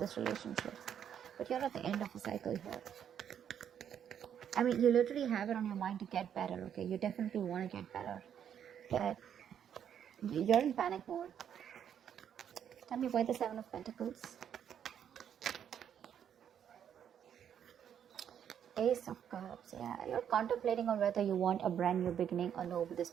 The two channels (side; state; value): left; quieter; 9.0 dB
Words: relationship. But you're at the end of a cycle here. I mean, you literally have it on your mind to get better, okay? You definitely want to get better. But you're in panic mode. Tell me why the Seven of Pentacles? Ace of Cups, yeah. You're contemplating on whether you want a brand new beginning or no with this